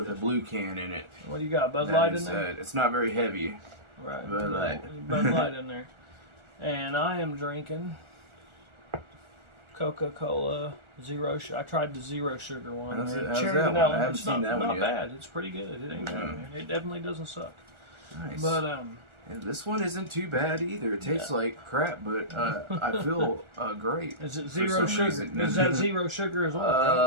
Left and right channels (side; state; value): left; late; 1.4 ms